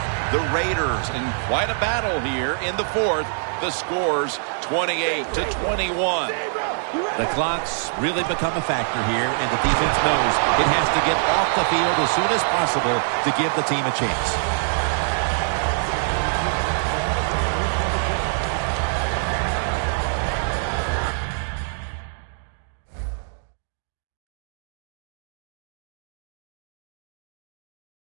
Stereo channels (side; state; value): left; silent; digital silence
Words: The Raiders in quite a battle here in the fourth. The score's 28-21. The clock's really become a factor here, and the defense knows it has to get off the field as soon as possible to give the team a chance.